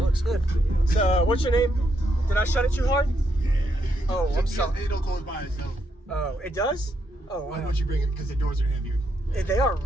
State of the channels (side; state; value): both; normal; correlation 0.78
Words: good. So, what's your name? Did I shut it too hard? Yeah. Oh, I'm sorry. It'll close by itself. Oh, it does? Oh, wow. Why don't you bring it? Because the doors are heavier. They are